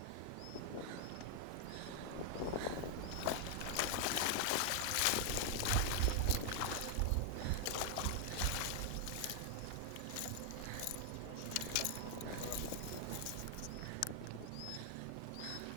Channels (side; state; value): both; different; correlation 0.00